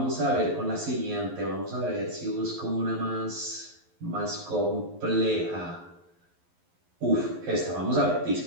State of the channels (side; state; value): left; late; 11 ms